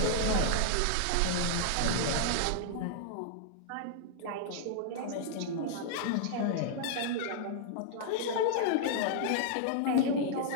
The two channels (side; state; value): both; different; correlation -0.01